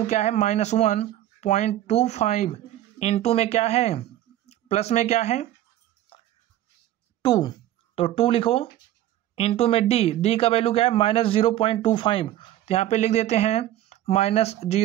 क्या है, -1.25 इंटू में क्या है, प्लस में क्या है 2, तो 2 लिखो, इंटू में d का वैल्यू क्या है, -0.25, तो यहाँ पे लिख देते हैं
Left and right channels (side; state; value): left; quieter; 13.4 dB